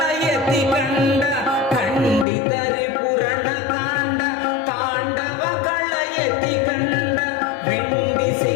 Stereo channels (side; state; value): right; drops out; at 2.2 s